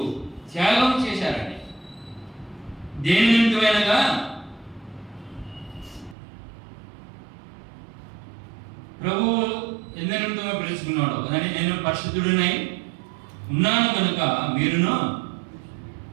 త్యాగం చేశారండి. దేని నిమిత్తమైనగా? ప్రభువు ఎందు నిమిత్తమై పిలుచుకున్నాడు కదండి. నేను పరిశుద్ధుడినై ఉన్నాను కనుక మీరును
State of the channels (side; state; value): left; drops out; at 6.2 s